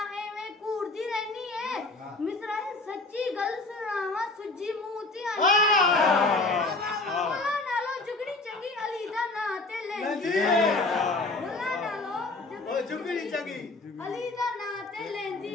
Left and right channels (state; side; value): quieter; right; 3.2 dB